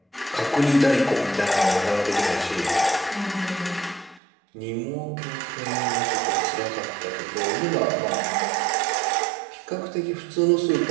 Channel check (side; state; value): left; drops out; at 4.2 s